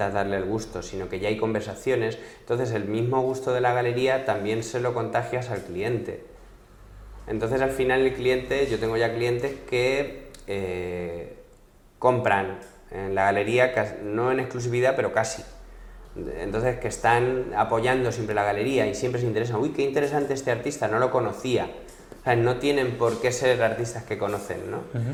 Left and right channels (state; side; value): identical; both; correlation 1.00